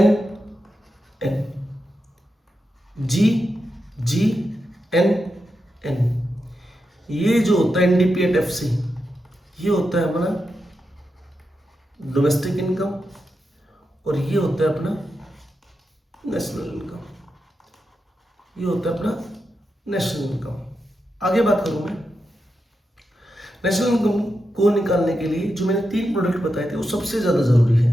ये जो होता है एनडीपी एट एफसी, ये होता है अपना डोमेस्टिक इनकम और ये होता है अपना नेशनल इनकम। आगे बात करूं मैं नेशनल इनकम को निकालने के लिए जो मैंने 3 प्रोडक्ट बताए थे वो सबसे ज्यादा जरूरी है।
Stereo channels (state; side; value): normal; both; correlation 0.88